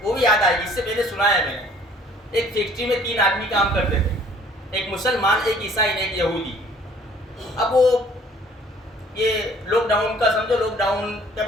وہ بھی یاد آئے گی، اس سے پہلے سنایا ہے میں نے. ایک فیکٹری میں 3 آدمی کام کرتے تھے، ایک مسلمان، ایک عیسائی، ایک یہودی. اب وہ یہ لاک ڈاؤن کا سمجھو، لاک ڈاؤن کہ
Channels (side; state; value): both; normal; correlation 0.56